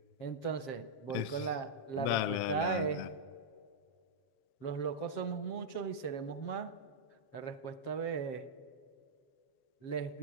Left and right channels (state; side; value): late; right; 7.5 ms